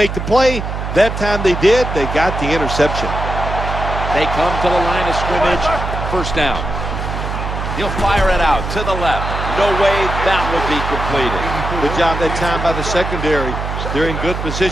the play. That time they did. They got the interception. They come to the line of scrimmage. First down. He'll fire it out to the left. No way that would be completed. Good job that time by the secondary. They're in good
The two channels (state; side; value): noise; right; hum, 4 dB below the sound